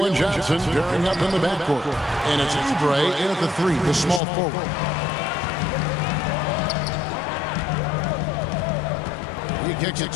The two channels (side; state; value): right; drops out; at 4.2 s